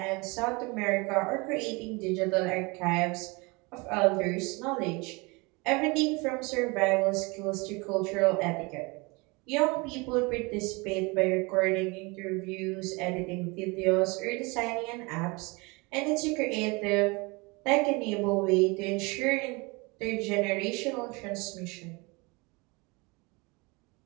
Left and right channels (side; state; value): left; quieter; 27.0 dB